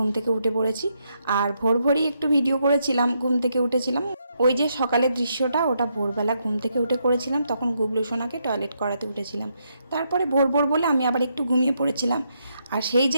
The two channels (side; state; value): both; inverted; correlation -0.78